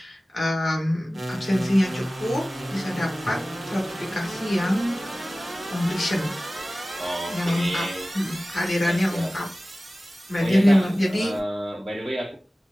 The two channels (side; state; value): both; normal; correlation 0.97